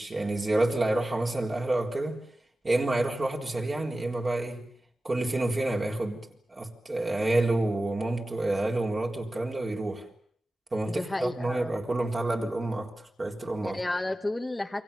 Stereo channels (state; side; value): normal; both; correlation 0.95